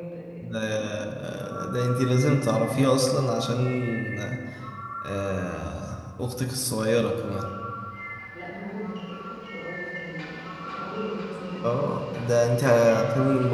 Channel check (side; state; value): both; identical; correlation 1.00